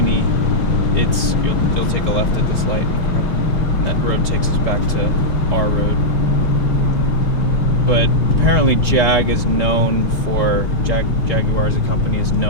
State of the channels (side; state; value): both; normal; correlation -0.07